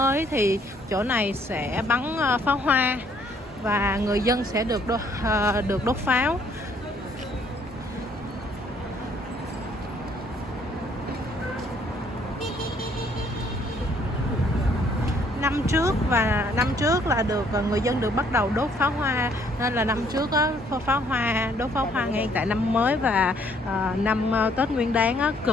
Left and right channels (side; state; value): both; normal; correlation 0.64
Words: thì chỗ này sẽ bắn pháo hoa và người dân sẽ được đốt pháo. Năm trước là người dân được bắt đầu đốt pháo hoa, nên là năm trước á, đốt pháo hoa ngay tại năm mới và năm Tết Nguyên Đán á,